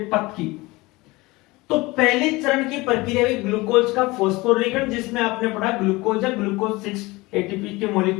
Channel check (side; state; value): right; quieter; 22.1 dB